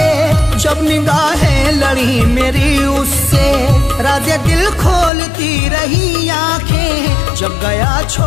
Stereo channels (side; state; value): right; drops out; at 5.1 s